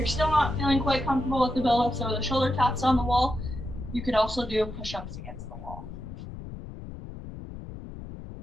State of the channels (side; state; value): left; noise; rumble, 12 dB below the sound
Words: still not feeling quite comfortable with the build-ups or the shoulder taps on the wall, you could also do push-ups against the wall.